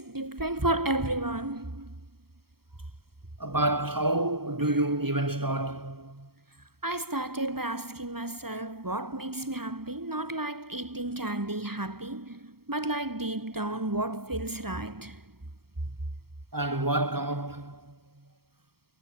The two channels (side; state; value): left; late; 0.95 ms